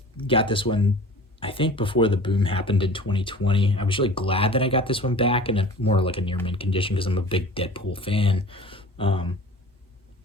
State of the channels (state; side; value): normal; both; correlation 0.42